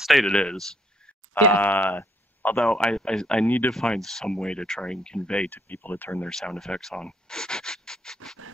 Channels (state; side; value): normal; both; correlation 0.68